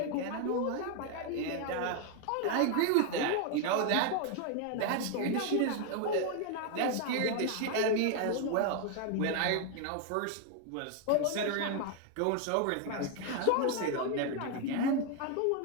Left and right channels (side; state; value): both; different; correlation 0.01